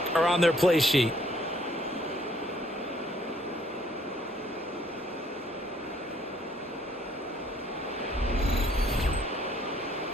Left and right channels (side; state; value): both; normal; correlation 0.63